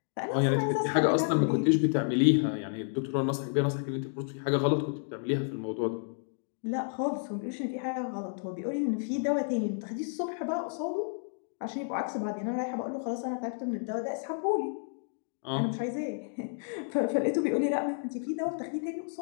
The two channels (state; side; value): silent; right; digital silence